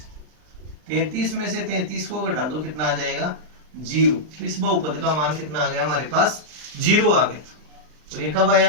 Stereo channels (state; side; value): late; left; 39 ms